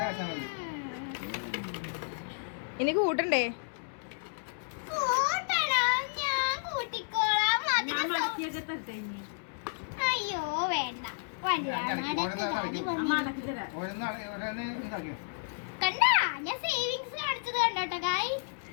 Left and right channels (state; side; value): silent; right; digital silence